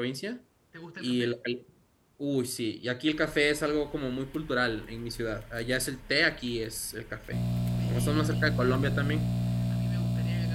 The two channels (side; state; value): both; identical; correlation 1.00